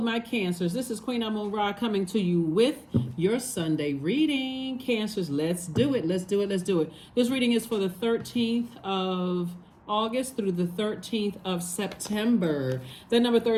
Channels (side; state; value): both; identical; correlation 1.00